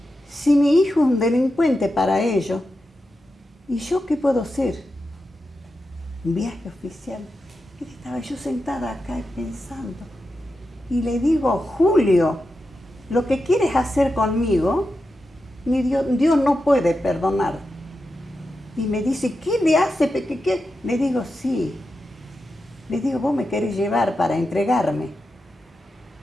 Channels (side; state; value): both; normal; correlation 0.89